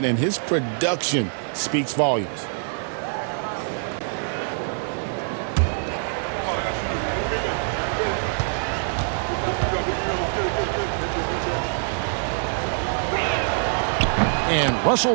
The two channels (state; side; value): silent; left; digital silence